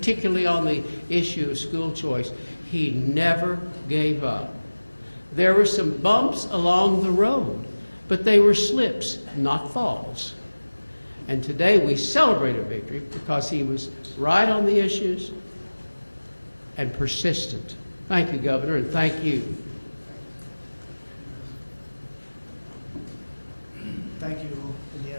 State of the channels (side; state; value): both; inverted; correlation -1.00